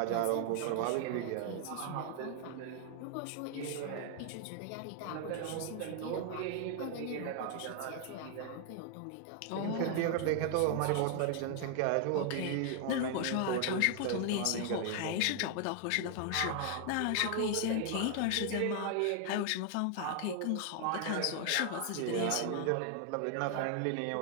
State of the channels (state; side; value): different; both; correlation 0.00